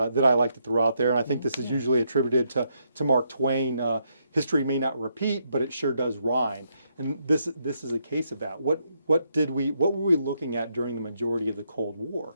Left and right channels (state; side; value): inverted; both; correlation -0.77